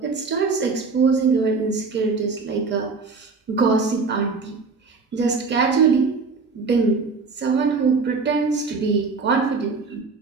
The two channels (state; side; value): quieter; left; 4.5 dB